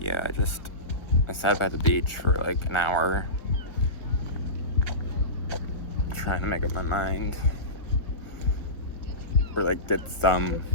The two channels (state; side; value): late; right; 1.1 ms